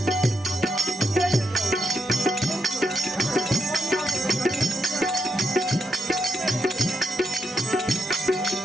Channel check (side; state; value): both; normal; correlation 0.81